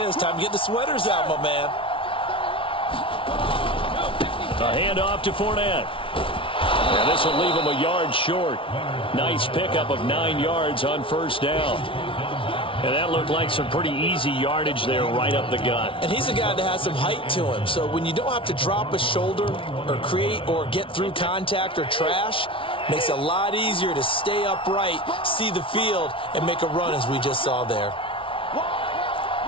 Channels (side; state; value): right; late; 0.25 ms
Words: Time to get the sweaters out, my man. A handoff to Fournette. And this will leave him a yard short. Nice pickup of 9 yards on 1st down. And that looked like some pretty easy yardage there right up the gut. And he's a guy that has some height to him. So when you don't have to drop a shoulder or create or get through contact or trash, makes it a lot easier to stay upright, see the field, and make a run as we just saw there.